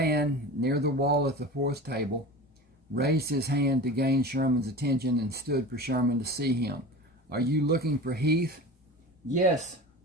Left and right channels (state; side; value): normal; both; correlation 0.33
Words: near the wall at the fourth table raised his hand to gain Sherman's attention and stood for Sherman to see him. "Are you looking for Heath?" "Yes.